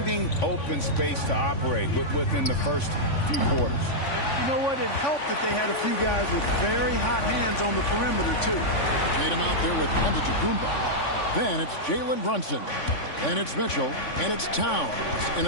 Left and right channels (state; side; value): late; right; 3.5 ms